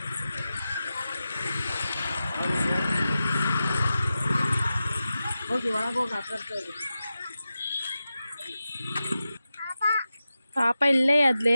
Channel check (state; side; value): inverted; both; correlation -0.92